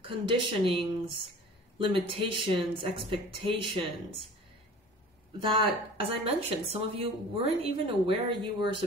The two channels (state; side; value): normal; both; correlation 0.43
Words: conditionings, limitations, expectations that, as I mentioned, some of you weren't even aware you were